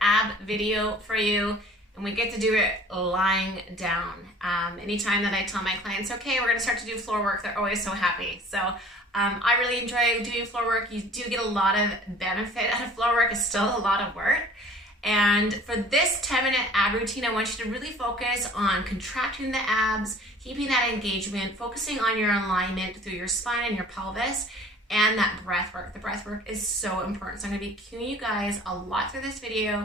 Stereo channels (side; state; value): both; normal; correlation 0.49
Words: ab video for you, and we get to do it lying down. Anytime that I tell my clients, okay, we're gonna start to do floor work, they're always so happy. So I really enjoy doing floor work. You do get a lot of benefit out of floor work. It's still a lot of work. And for this 10-minute ab routine, I want you to really focus on contracting the abs, keeping that engagement, focusing on your alignment through your spine and your pelvis, and that breath work. The breath work is so important. So I'm gonna be cueing you guys a lot through this